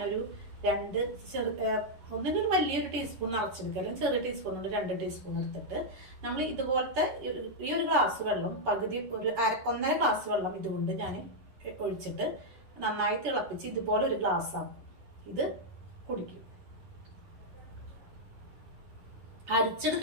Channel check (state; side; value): late; left; 11 ms